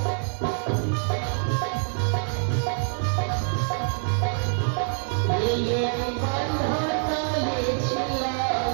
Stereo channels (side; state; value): left; silent; 61 dB below the other